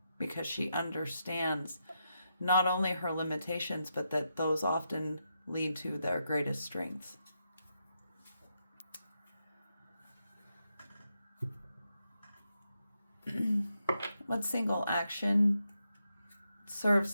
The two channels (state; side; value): inverted; both; correlation -0.84